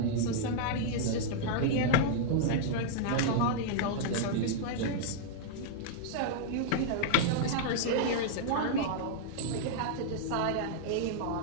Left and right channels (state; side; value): different; both; correlation -0.01